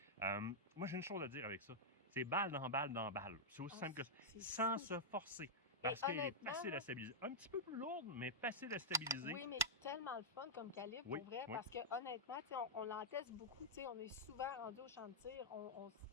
Moi, j'ai une chose à dire avec ça. C'est balle dans balle dans balle. C'est aussi simple que ça. Sans se forcer. Parce qu'elle est facile à stabiliser. Un petit peu plus lourde, mais facile à stabiliser. Oui, mais tellement le fun comme calibre, pour vrai, parce que honnêtement, on l'en teste beaucoup. On est souvent rendu au champ de tir.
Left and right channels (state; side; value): normal; both; correlation -0.08